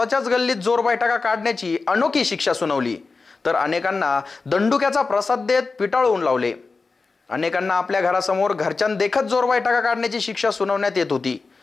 गल्लीत जोरबैठका काढण्याची अनोखी शिक्षा सुनावली. तर अनेकांना दंडुक्याचा प्रसाद देत पिटाळून लावले. अनेकांना आपल्या घरासमोर घरच्यांदेखत जोरबैठका काढण्याची शिक्षा सुनावण्यात येत होती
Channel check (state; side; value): quieter; right; 4.2 dB